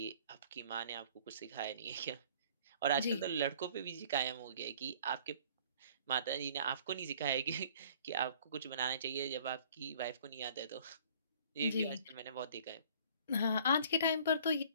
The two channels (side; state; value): both; inverted; correlation -0.54